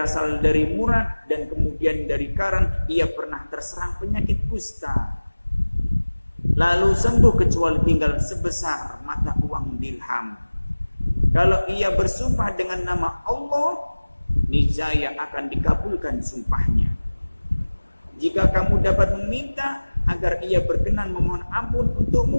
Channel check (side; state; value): both; inverted; correlation -1.00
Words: dari Murad dan kemudian dari Karan. Ia pernah terserang penyakit kusta, lalu sembuh kecuali tinggal sebesar mata uang dirham. Kalau ia bersumpah dengan nama Allah, niscaya akan dikabulkan sumpahnya. Jika kamu dapat meminta agar ia berkenan memohon ampun